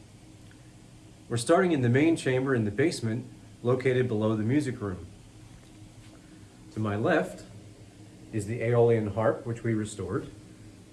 We're starting in the main chamber in the basement, located below the music room. To my left is the Aeolian Harp, which we restored,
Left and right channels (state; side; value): identical; both; correlation 1.00